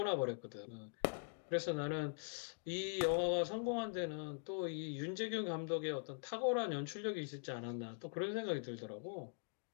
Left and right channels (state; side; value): silent; right; digital silence